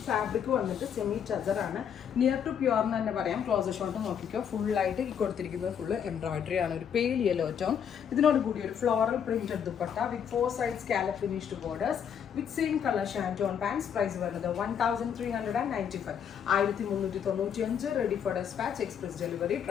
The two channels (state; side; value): quieter; right; 8.1 dB